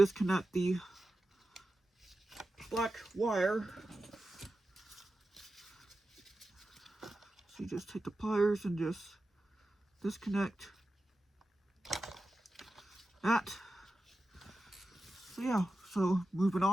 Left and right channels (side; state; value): both; normal; correlation 0.92